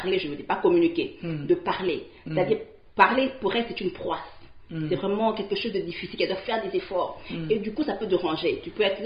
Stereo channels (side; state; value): both; identical; correlation 1.00